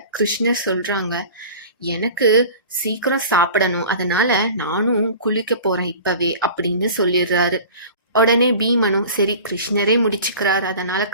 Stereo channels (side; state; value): both; inverted; correlation -0.40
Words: கிருஷ்ணர் சொல்றாங்க, எனக்கு சீக்கிரம் சாப்பிடணும், அதனால நானும் குளிக்க போறேன் இப்பவே அப்படின்னு சொல்லிடுறாரு. உடனே பீமனும் சரி கிருஷ்ணரே முடிச்சுக்கிறார், அதனால